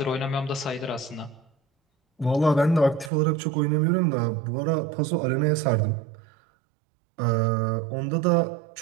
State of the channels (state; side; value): drops out; left; at 3.1 s